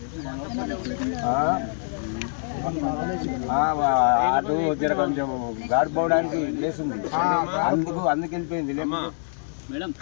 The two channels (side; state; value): right; silent; 62 dB below the other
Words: అటు జర కొంచెం గాడుపు పోవడానికి ప్లేస్ ఉంది అందుకు వెళ్ళిపోయింది మేడం